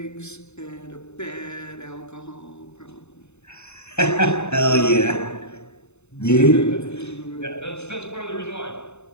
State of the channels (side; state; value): right; late; 0.82 ms